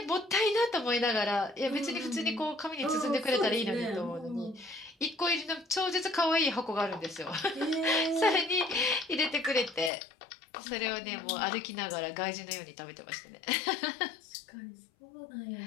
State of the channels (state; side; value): drops out; right; at 9.9 s